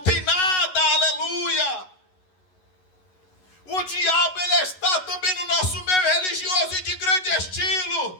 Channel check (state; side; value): late; right; 11 ms